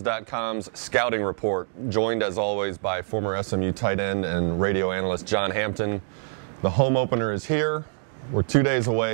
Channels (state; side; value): silent; left; 62 dB below the other